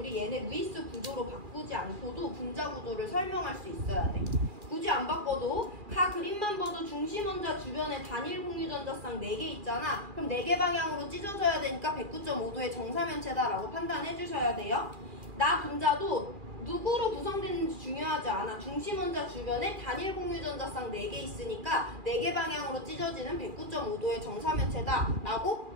얘네 루이스 구조로 바꾸지 않고도 분자 구조를 설명할 수 있어야 돼. 굳이 안 바꿔도 가 그림만 봐도 중심 원자 주변에 단일 공유 전자쌍 4개 있잖아. 그럼 4개 방향으로 찢어져야 되니까 109.5도의 정사면체다라고 판단해 주셔야 돼요. 나 분자도 누구로 구성되는지 중요하지 않아. 중심 원자 주변에 단일 공유 전자쌍 4개 있으니까 4개 방향으로 찢어지는 109.5도의 정사면체다라고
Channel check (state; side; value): late; left; 2.4 ms